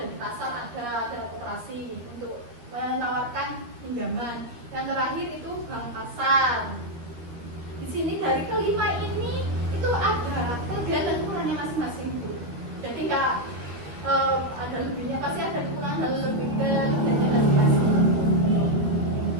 di pasar, ada koperasi untuk menawarkan pinjaman. Yang terakhir itu bank pasar. Di sini dari kelima ini itu ada kelebihan dan kekurangannya masing-masing Bu. Jadi nggak ada lebihnya, pasti ada kekurangan dan kelebihannya masing-masing.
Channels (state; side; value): late; left; 13 ms